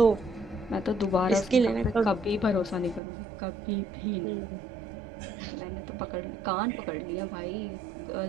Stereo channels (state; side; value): drops out; left; at 3.0 s